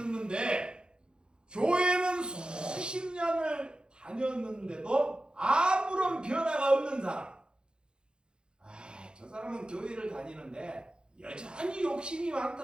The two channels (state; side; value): late; left; 0.049 ms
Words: 교회는 수십 년을 다녔는데도 아무런 변화가 없는 사람. 저 사람은 교회를 다니는데 여전히 욕심이